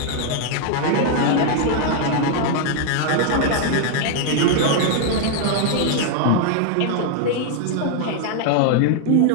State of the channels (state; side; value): different; both; correlation 0.00